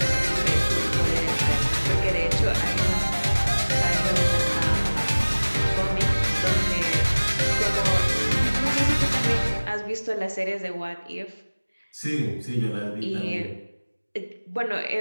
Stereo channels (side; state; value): both; inverted; correlation -1.00